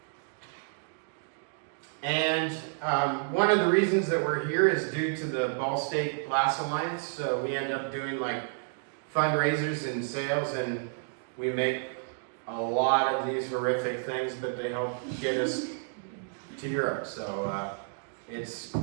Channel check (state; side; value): silent; left; digital silence